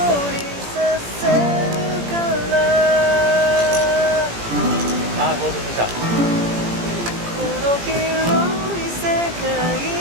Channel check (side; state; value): left; late; 17 ms